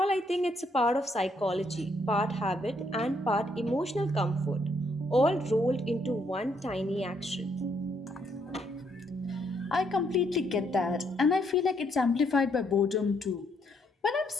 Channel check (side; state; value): both; normal; correlation 0.72